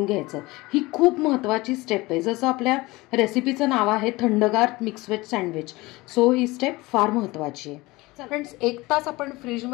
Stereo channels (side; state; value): right; quieter; 21.4 dB